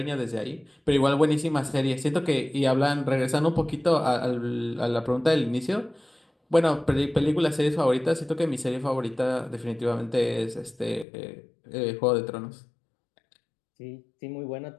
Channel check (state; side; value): drops out; right; at 11.1 s